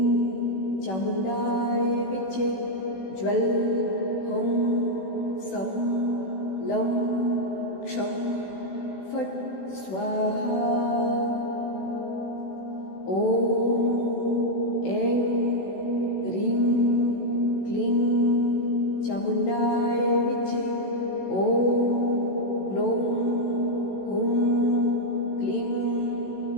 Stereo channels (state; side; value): late; right; 16 ms